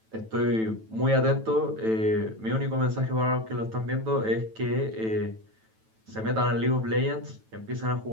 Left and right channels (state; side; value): late; left; 9.1 ms